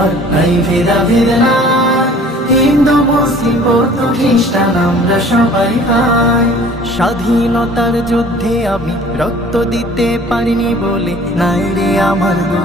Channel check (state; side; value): normal; both; correlation 0.50